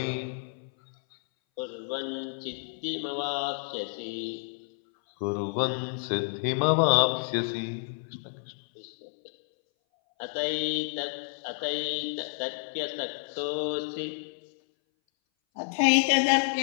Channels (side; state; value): right; silent; 58 dB below the other